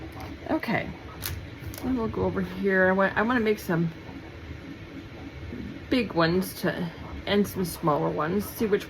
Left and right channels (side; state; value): both; identical; correlation 1.00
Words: Okay, then we'll go over here. I want to make some big ones and some smaller ones. See which